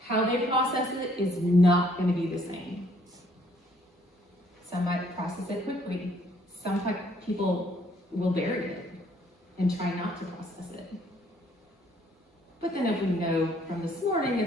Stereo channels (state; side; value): normal; both; correlation 0.64